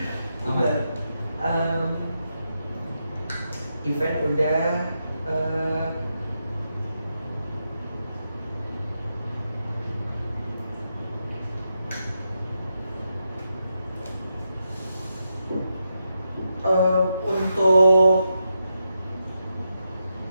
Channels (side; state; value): both; inverted; correlation -0.85